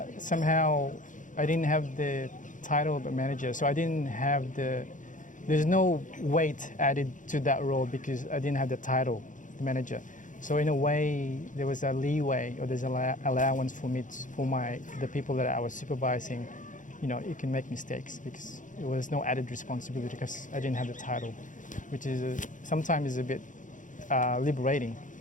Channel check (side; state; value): right; late; 0.37 ms